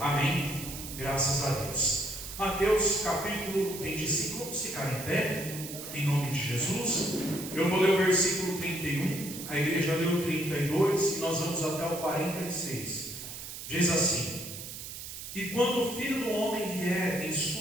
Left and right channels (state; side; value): noise; right; hiss, 10 dB below the sound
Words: Graças a Deus. Mateus capítulo 25, vamos ficar em pé, em nome de Jesus. Eu vou ler o versículo 31, a igreja leu o 32 e nós vamos até o 46. Diz assim: E quando o Filho do Homem vier em